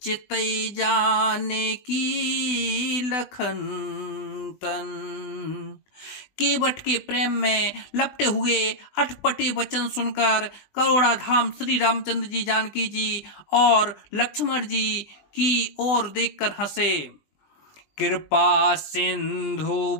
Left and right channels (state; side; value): late; right; 20 ms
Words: चितई जाने की लखन तन। केवट के प्रेम में लपटे हुए अटपटे वचन सुनकर करुणाधाम श्री रामचंद्र जी, जानकी जी और लक्ष्मण जी की ओर देखकर हंसे। कृपा सिंधु